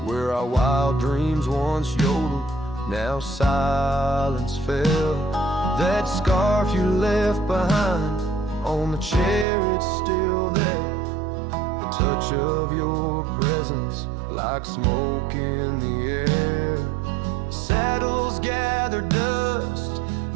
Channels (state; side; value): drops out; left; at 9.5 s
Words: where our wild dreams once yodeled, now silence fell. That scarf you left behind on the chair, it's still there. The touch of your presence like smoke in the air. Saddles gather dust,